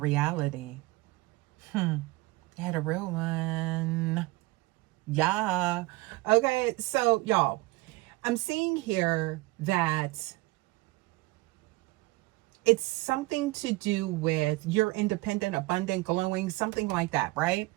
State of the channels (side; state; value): left; quieter; 21.1 dB